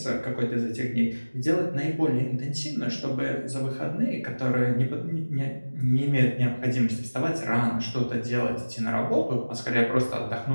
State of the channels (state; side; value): inverted; both; correlation -1.00